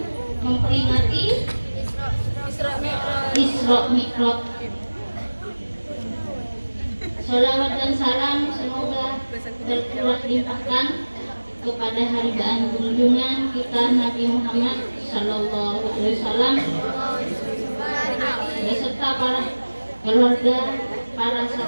memperingati Isra Mi'raj. Salawat dan salam semoga tercurah limpahkan kepada haribaan junjungan kita Nabi Muhammad Sallallahu Alaihi Wasallam beserta para keluarga, para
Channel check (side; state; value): both; inverted; correlation -1.00